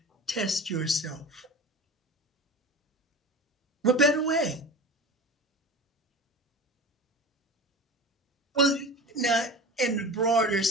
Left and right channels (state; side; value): normal; both; correlation 0.33